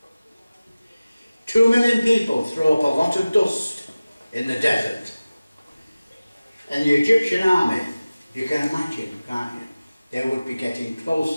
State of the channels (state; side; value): inverted; both; correlation -0.97